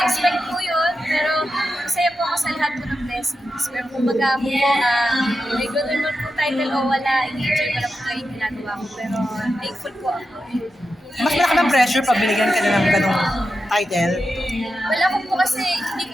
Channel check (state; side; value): normal; both; correlation 0.90